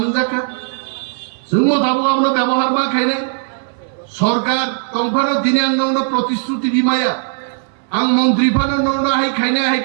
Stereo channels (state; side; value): silent; left; 64 dB below the other